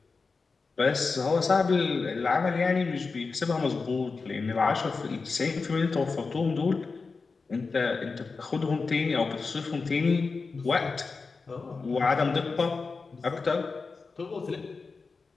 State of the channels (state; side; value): quieter; right; 4.4 dB